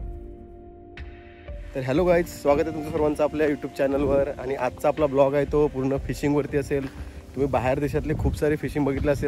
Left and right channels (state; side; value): identical; both; correlation 1.00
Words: तर हॅलो गाईज, स्वागत आहे तुमचं सर्वांचं आपल्या यूट्यूब चॅनलवर. आणि आजचा आपला ब्लॉग आहे तो पूर्ण फिशिंगवरती असेल. तुम्ही बाहेर देशातले खूप सारे फिशिंग बघितले